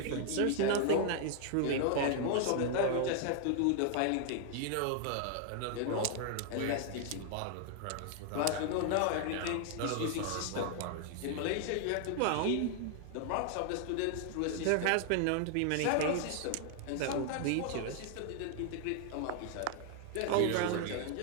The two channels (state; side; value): different; both; correlation 0.00